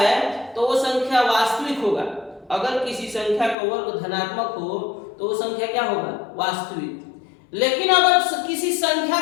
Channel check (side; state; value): right; drops out; at 3.6 s